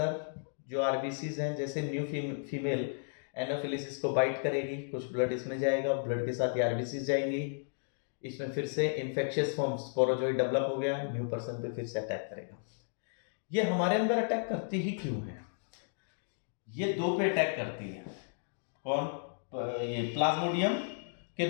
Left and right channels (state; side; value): silent; right; digital silence